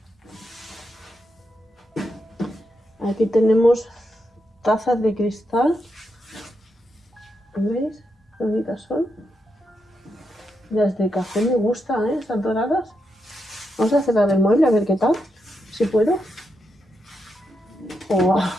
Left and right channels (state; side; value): normal; both; correlation 0.84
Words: Aquí tenemos tazas de cristal. ¿Veis? Qué bonitas son. Las de café me gustan, están doradas. Vamos a cerrar el mueble a ver qué tal. Si puedo. Oh,